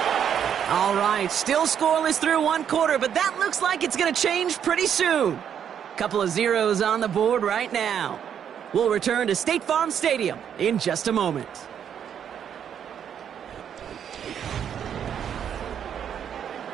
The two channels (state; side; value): quieter; left; 8.6 dB